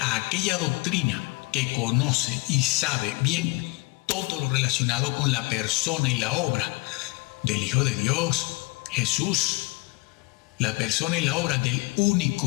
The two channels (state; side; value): quieter; right; 26.9 dB